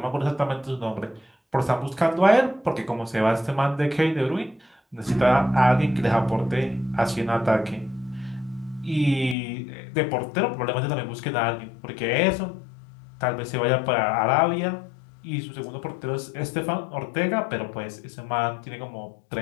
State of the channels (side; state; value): right; drops out; at 9.3 s